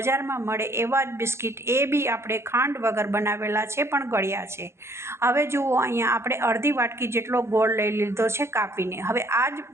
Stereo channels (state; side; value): late; left; 0.13 ms